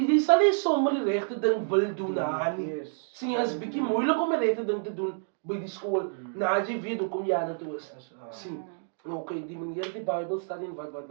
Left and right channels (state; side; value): silent; left; digital silence